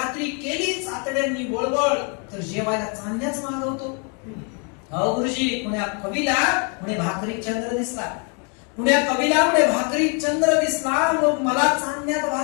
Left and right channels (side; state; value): right; quieter; 37.6 dB